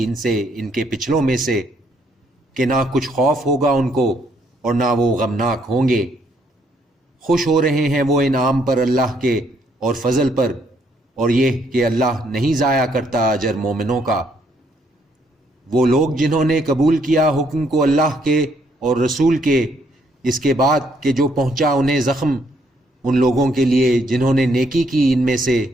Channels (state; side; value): normal; both; correlation 0.70